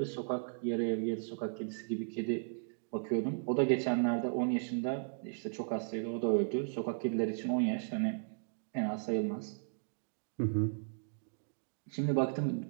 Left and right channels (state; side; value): silent; left; digital silence